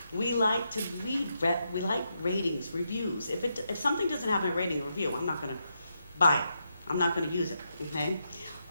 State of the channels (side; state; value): both; inverted; correlation -0.83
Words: We like to read, we like ratings, reviews. If something doesn't have a rating or review, I'm not gonna buy it. I'm not gonna use it, okay?